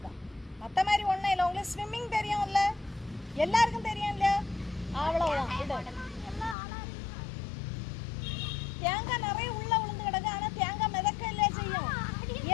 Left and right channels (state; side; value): drops out; right; at 6.6 s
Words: மற்ற மாதிரி ஒன்றும் இல்லை. உங்களுக்கு ஸ்விம்மிங் தெரியும்ல, எல்லாருக்கும் தெரியும் இல்லையா? அவ்வளோதான். இது தேங்காய் நிறைய உள்ள விழுந்து கிடக்கு, ஆனால் தேங்காய் மிதக்க இல்லை செய்யும்.